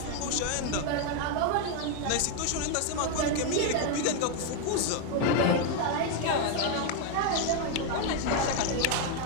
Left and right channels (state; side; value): different; both; correlation 0.01